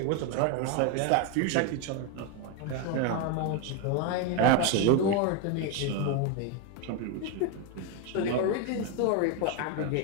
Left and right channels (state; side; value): different; both; correlation 0.01